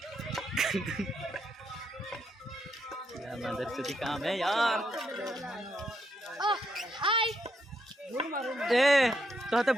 मदर चोदी काम है यार। ए तो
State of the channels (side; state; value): both; normal; correlation 0.78